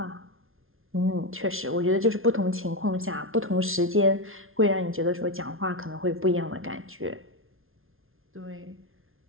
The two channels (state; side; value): late; left; 0.61 ms